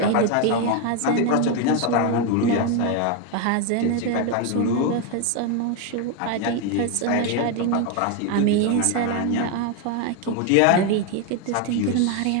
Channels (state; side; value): different; both; correlation 0.02